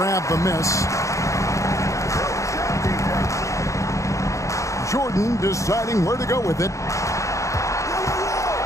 the miss. Jordan deciding where to go with it.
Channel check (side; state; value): right; late; 0.15 ms